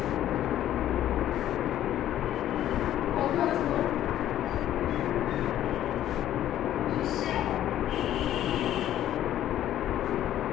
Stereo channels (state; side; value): quieter; right; 12.2 dB